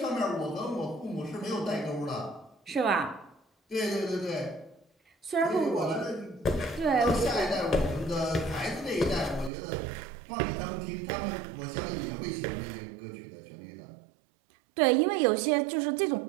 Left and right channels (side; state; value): left; drops out; at 9.5 s